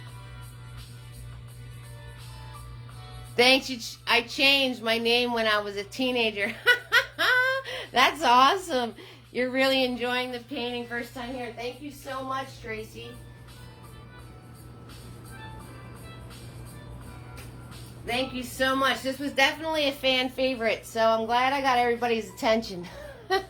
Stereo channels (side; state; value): both; identical; correlation 1.00